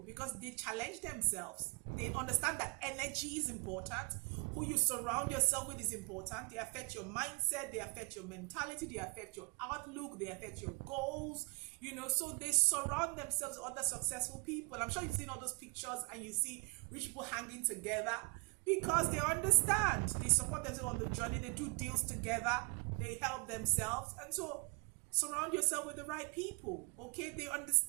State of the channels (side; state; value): left; quieter; 31.5 dB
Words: because they challenge themselves. They understand that energy is important. Who you surround yourself with is important. They affect your mindset. They affect your mentality. They affect your outlook. They affect your goals. You know, so they surround themselves with other successful people. I'm sure you've seen all those pictures and you see rich people hanging together because they understand. They support themselves on the journey. They do deals together. They help themselves. And so surround yourself with the right people. Okay, they